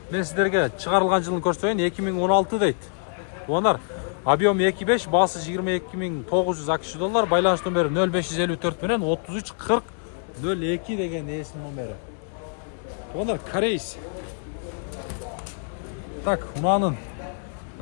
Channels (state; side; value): silent; right; 62 dB below the other